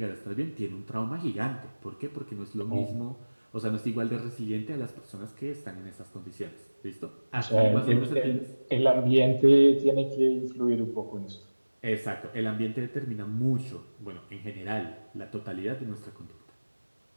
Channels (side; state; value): both; inverted; correlation -1.00